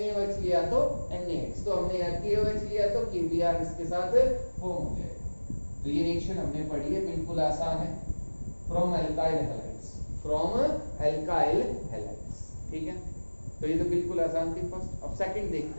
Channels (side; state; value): both; inverted; correlation -1.00